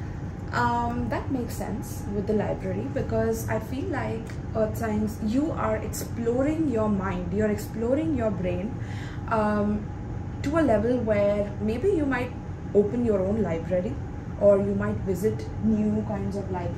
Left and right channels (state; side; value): identical; both; correlation 1.00